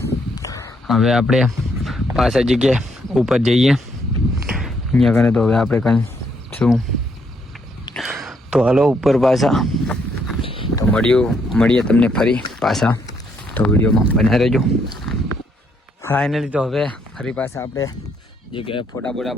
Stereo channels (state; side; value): normal; both; correlation 0.73